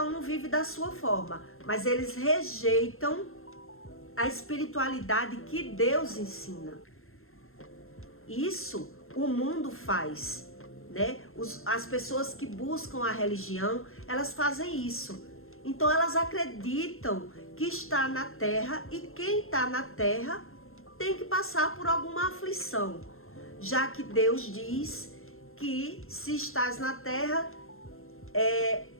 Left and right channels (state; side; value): late; right; 0.61 ms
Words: um vive da sua forma, mas eles rejeitam a espiritualidade que Deus ensina. Isso o mundo faz, né? As pessoas que buscam a religião, elas fazem isso. Então elas acreditam que está na terra e quem está na terra tem que passar por alguma aflição, já que Deus diz que se estás na terra,